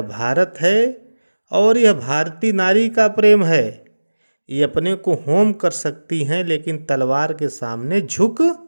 भारत है और यह भारतीय नारी का प्रेम है। ये अपने को होम कर सकती हैं लेकिन तलवार के सामने झुक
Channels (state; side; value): inverted; both; correlation -1.00